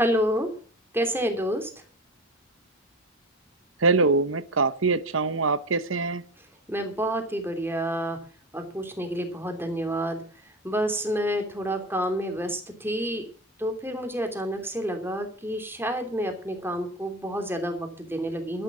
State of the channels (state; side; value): normal; both; correlation 0.27